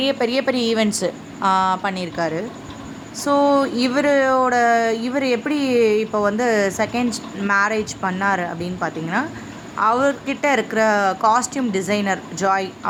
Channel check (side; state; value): both; identical; correlation 1.00